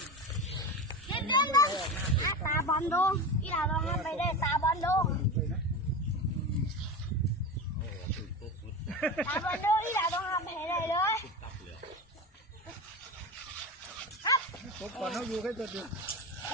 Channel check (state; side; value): normal; both; correlation 0.25